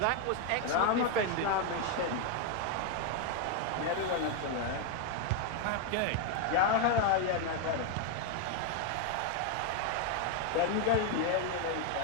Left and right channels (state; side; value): different; both; correlation 0.01